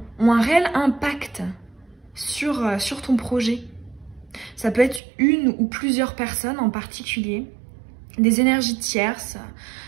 un réel impact sur ton projet. Ça peut être une ou plusieurs personnes en particulier, des énergies tierces,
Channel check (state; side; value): drops out; left; at 5.0 s